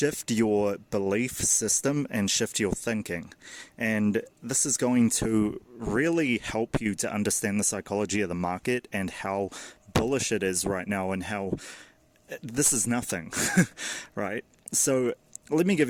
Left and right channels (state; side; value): identical; both; correlation 1.00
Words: your belief system and shift your thinking. And this is going to really help you to understand the psychology of the market and how bullish it is right now and how this is nothing, right? So let me